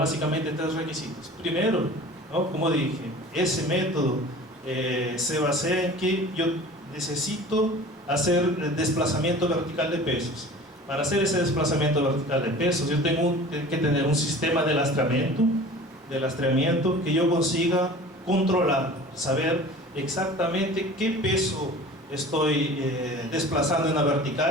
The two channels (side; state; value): both; normal; correlation 0.42